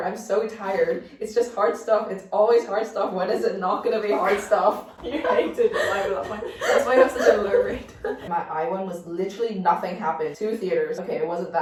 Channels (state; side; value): identical; both; correlation 1.00